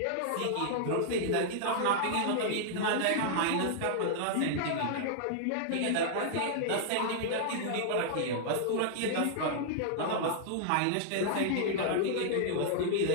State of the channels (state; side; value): different; both; correlation -0.01